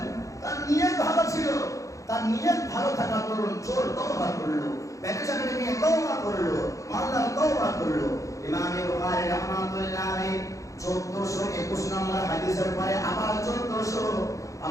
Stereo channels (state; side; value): late; right; 0.16 ms